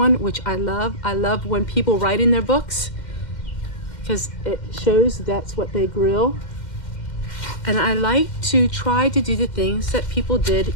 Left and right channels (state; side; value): late; right; 2.1 ms